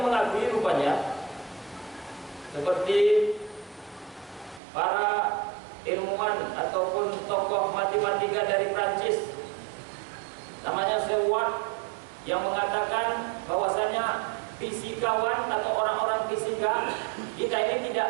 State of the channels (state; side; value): drops out; left; at 4.6 s